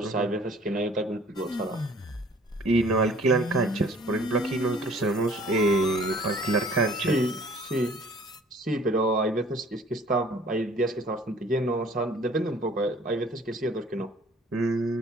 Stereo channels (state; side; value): normal; both; correlation 0.53